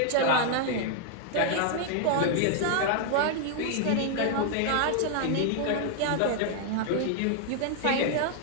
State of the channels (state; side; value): different; both; correlation 0.00